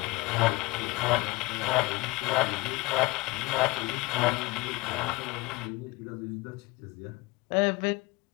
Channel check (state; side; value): quieter; right; 22.5 dB